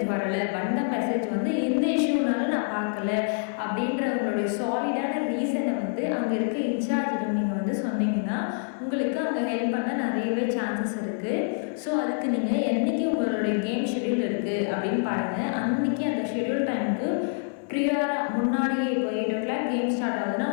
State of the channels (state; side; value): silent; right; 60 dB below the other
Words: வரலை, வந்த மெசேஜ் வந்து இந்த இஷ்யூனால நான் பார்க்கல அப்படின்ற உங்களுடைய சாலிடான ரீசனை வந்து அங்கே இருக்க இன்சார்ஜிடம் நீங்கள் வந்து சொன்னீங்கன்னா உங்களுக்கு அவங்க ஹெல்ப் பண்ண நிறையவே சான்சஸ் இருக்குது. ஸோ அதுக்கு நீங்கள் என்றைக்கு உங்களுடைய கேம் ஷெட்யூல் இருக்குது அப்படின்னு பாருங்கள். அன்றைக்கி அந்த ஷெட்யூல் டைமுக்கு ப்ரியாராக முன்னாடியே இப்போ 8 o'clock கேம் ஸ்டார்ட் ஆகுதுன்னா